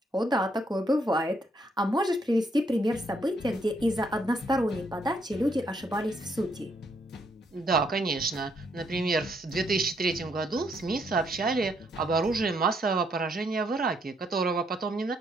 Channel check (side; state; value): both; normal; correlation 0.73